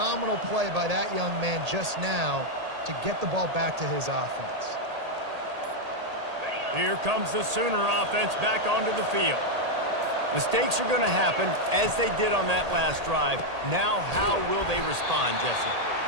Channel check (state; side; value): late; left; 1.8 ms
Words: play by that young man just now to get the ball back to his offense. Here comes the Sooner offense back onto the field. Mistakes are going to happen, as they did on that last drive. Now, how will they respond, Jesse?